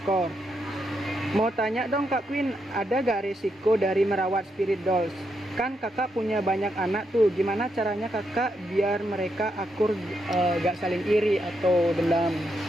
Mau tanya dong Kak Queen, ada gak risiko dari merawat spirit dolls? Kan kakak punya banyak anak tuh, gimana caranya kakak biar mereka akur, gak saling iri atau dendam?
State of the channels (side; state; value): both; normal; correlation 0.81